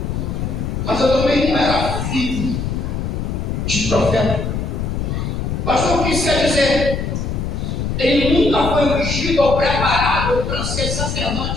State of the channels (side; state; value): left; noise; rumble, 2 dB below the sound